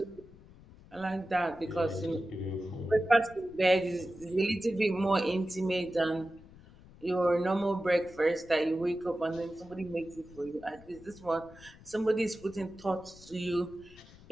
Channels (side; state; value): left; noise; rumble, 22 dB below the sound